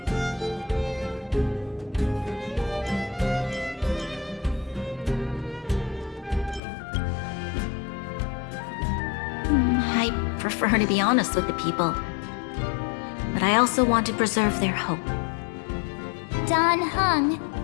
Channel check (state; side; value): drops out; right; at 6.6 s